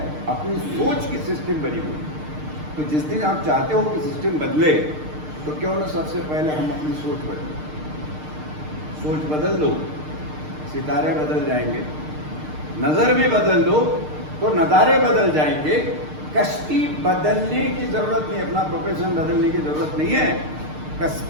अपनी सोच की सिस्टम बनी हुई। तो जिस दिन आप चाहते हो कि सिस्टम बदले, तो क्यों ना सबसे पहले हम अपनी सोच बदलें। सोच बदल दो, सितारे बदल जाएंगे। नजर भी बदल दो तो नज़ारे बदल जाएंगे। कश्ती बदलने की जरूरत नहीं, अपना प्रोफेशन बदलने की जरूरत नहीं है,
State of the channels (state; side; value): late; left; 6.6 ms